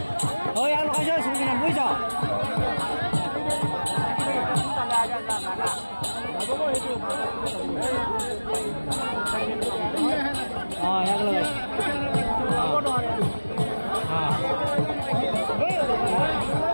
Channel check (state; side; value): inverted; both; correlation -1.00